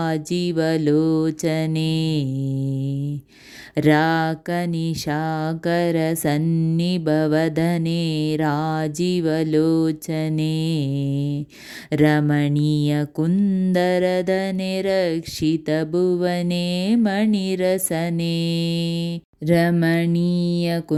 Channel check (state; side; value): identical; both; correlation 1.00